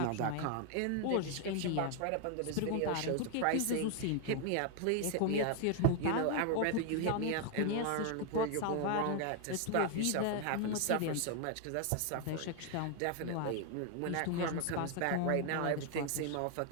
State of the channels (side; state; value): both; different; correlation 0.00